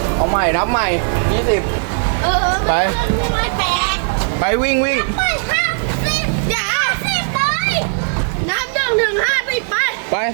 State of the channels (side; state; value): left; silent; digital silence